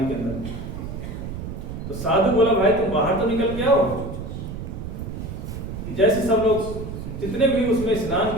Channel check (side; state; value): right; noise; rumble, 7 dB below the sound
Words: के अंदर। तो साधु बोला भाई तुम बाहर तो निकल के आओ। जैसे सब लोग जितने भी उसमें स्नान